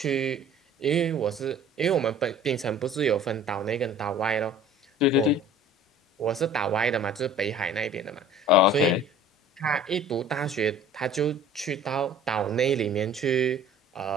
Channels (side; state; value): both; normal; correlation 0.47